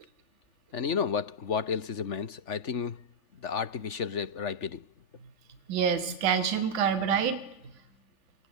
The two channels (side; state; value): right; late; 3.4 ms